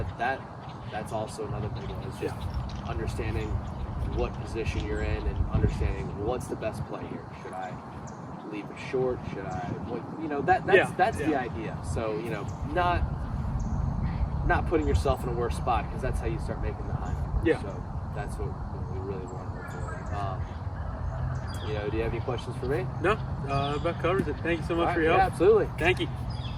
also another big one. Is just understanding what position you're in and understanding what's the best play here. Should I leave it short? Should I? That's the idea. So not putting yourself in a worse spot, because that's how you start making the high. Yeah. So that's what we really want to avoid. Do you have any questions for me? No, about covers it. Thank you so much for your Yeah, help. absolutely. Thank you.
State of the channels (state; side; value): identical; both; correlation 1.00